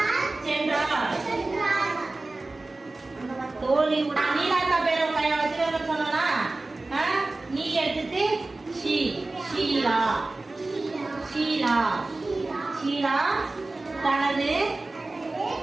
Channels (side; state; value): left; quieter; 3.1 dB